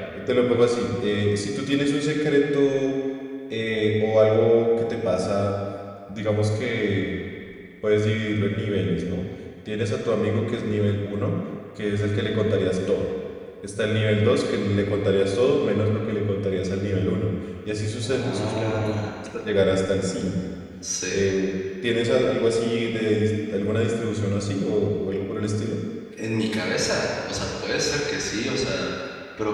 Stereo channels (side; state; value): both; identical; correlation 1.00